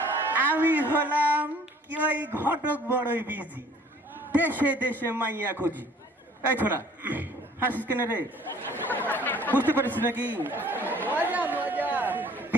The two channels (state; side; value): normal; both; correlation 0.54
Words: আমি হলাম কি ওই ঘটক বড়ই বিজি, দেশে দেশে মাইয়া খুঁজি। এই ছোড়া হাসিস কেন রে? বুঝতে পারিস নাকি?